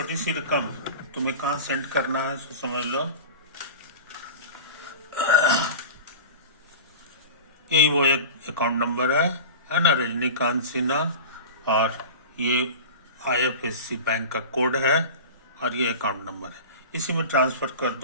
सी रकम तुम्हें कहाँ सेंड करना है सो समझ लो। यही वो एक अकाउंट नंबर है ना, रजनीकांत सिन्हा। और ये IFSC बैंक का कोड है, और ये अकाउंट नंबर है। इसी में ट्रांसफर कर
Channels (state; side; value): inverted; both; correlation -0.33